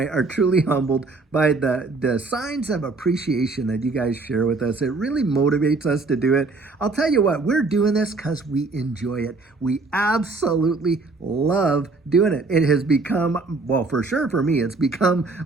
are truly humbled by the signs of appreciation that you guys share with us. It really motivates us to do it. I'll tell you what, we're doing this because we enjoy it. We absolutely love doing it. It has become, well, for sure for me, it's become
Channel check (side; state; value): left; quieter; 3.7 dB